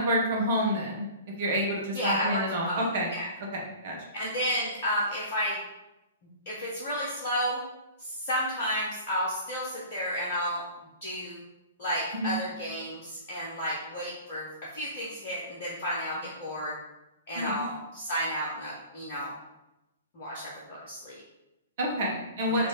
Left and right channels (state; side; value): inverted; both; correlation -0.41